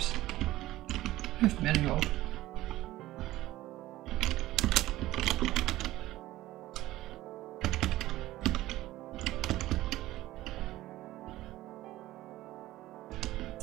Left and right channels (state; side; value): quieter; left; 16.1 dB